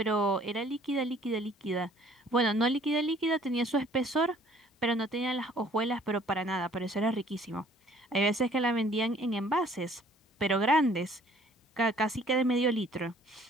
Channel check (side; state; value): both; normal; correlation 0.57